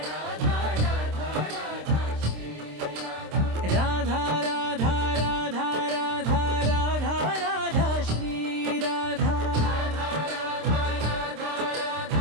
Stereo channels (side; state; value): left; late; 26 ms